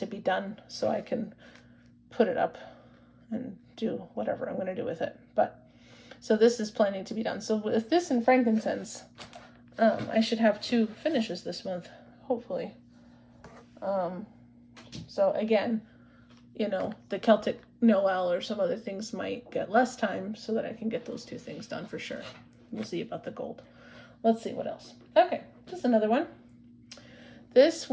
be done so I can put it up and do whatever I'm going to do with it. But so this is planning to be done. So with this and frankincense, I should have 2 finishes this month, hopefully. So again, you know, the Celtic Noel or some other things might get less time so that I can get those 2 things done for sure. We'll see about the gold. Let's see what else. Okay, just another one. This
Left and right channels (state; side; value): identical; both; correlation 1.00